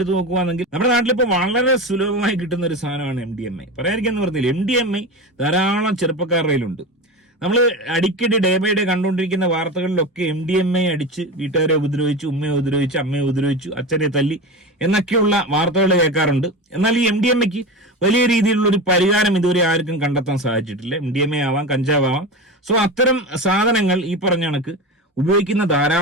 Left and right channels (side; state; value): both; normal; correlation 0.25